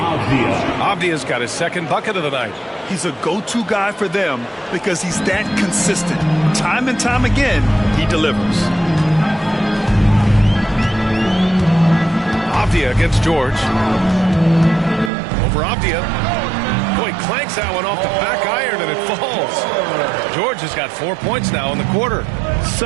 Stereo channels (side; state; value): left; drops out; at 15.1 s